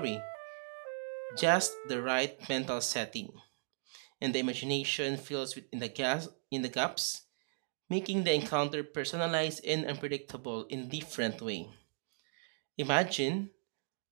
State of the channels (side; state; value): left; silent; digital silence